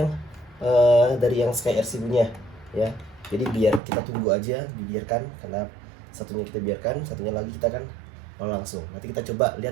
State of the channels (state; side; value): drops out; left; at 3.8 s